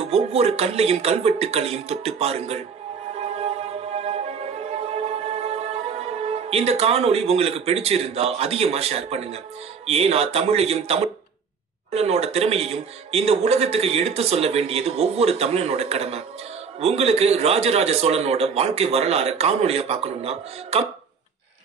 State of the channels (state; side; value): quieter; left; 5.9 dB